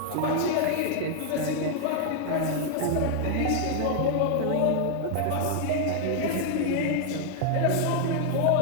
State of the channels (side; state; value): both; different; correlation 0.00